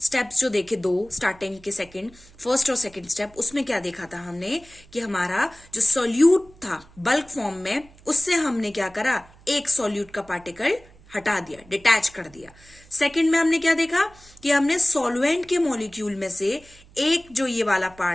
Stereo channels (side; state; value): right; noise; hum, 25 dB below the sound